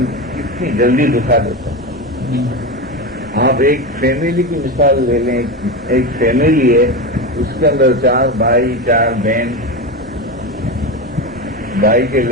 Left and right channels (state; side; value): normal; both; correlation 0.19